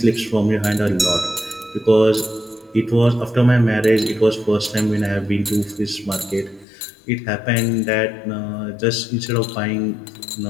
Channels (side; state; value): right; drops out; at 6.7 s